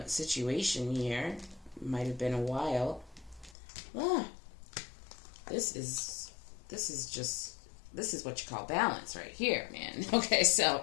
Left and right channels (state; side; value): drops out; right; at 3.6 s